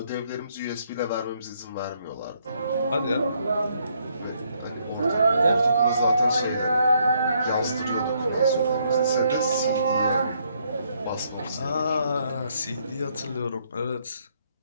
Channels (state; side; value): inverted; both; correlation -0.71